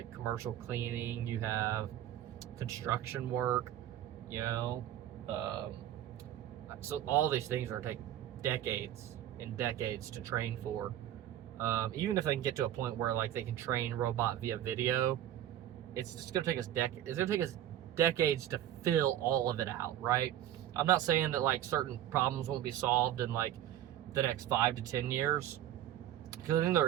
commercial cleaning, you have construction work, you know, so all these things are take decades and decades to train for. Even if they can get to a point where like they can train robot via video, it's just gonna take us decades to fill all of it out, right? I'm not saying that like certain problems won't be solved in like the next 5 to 10 years, because I think there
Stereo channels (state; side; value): quieter; left; 11.9 dB